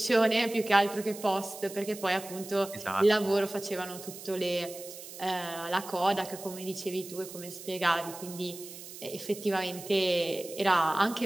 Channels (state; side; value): noise; right; hiss, 13 dB below the sound